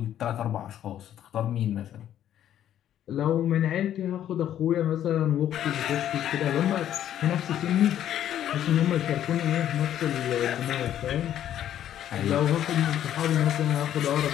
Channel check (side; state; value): right; quieter; 11.0 dB